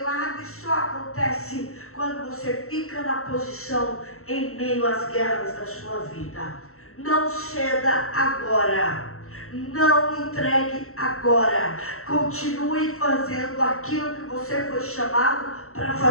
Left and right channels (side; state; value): right; late; 0.63 ms